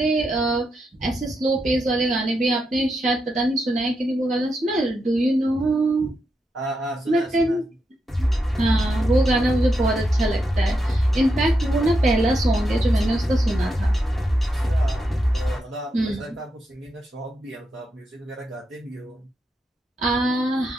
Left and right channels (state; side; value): normal; both; correlation 0.84